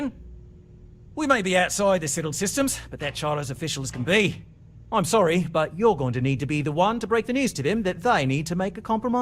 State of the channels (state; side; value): identical; both; correlation 1.00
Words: We may be outside the settled systems, but that charter's official as can be. I'm sorry, but you're going to need to be the one to break the news to them that they need to make a